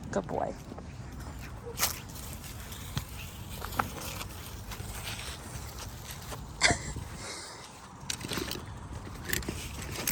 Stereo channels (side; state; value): both; identical; correlation 1.00